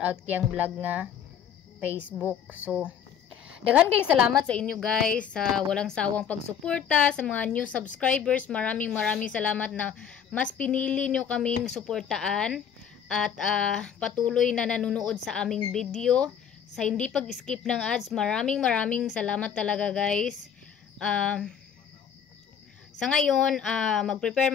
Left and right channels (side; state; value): right; quieter; 8.0 dB